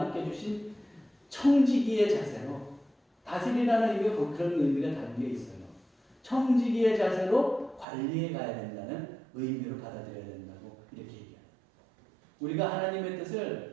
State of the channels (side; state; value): left; drops out; at 7.9 s